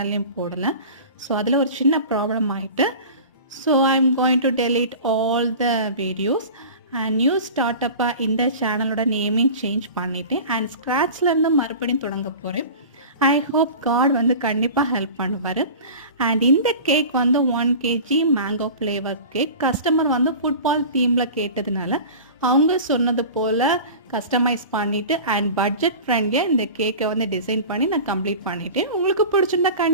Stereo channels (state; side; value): inverted; both; correlation -0.36